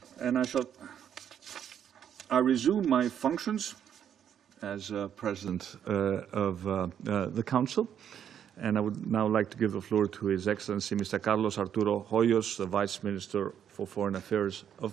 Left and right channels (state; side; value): quieter; left; 9.1 dB